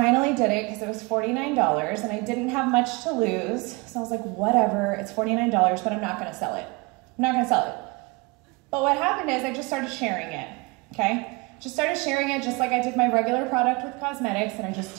did it because it was $49 and I didn't have much to lose. So I was like, whatever, it's $49, but I'm not going to sell it. I'm not going to sell it. But what happened is I just started sharing it, okay? Just started sharing it just like I did my regular product with cosmetics, and I just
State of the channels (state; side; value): quieter; left; 26.5 dB